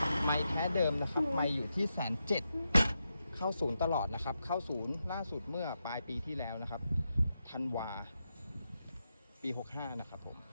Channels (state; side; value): inverted; both; correlation -0.86